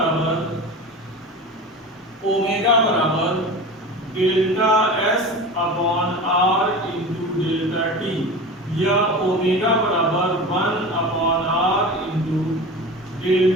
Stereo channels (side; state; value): both; normal; correlation 0.32